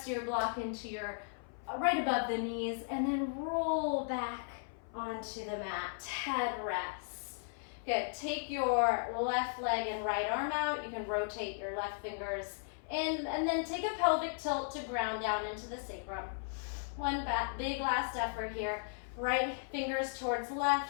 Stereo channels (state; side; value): silent; right; 54 dB below the other